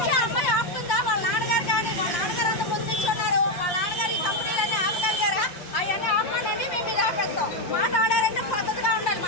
మాట్లాడారంటే పద్ధతిగా ఉండాలి,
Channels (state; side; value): late; right; 5.7 ms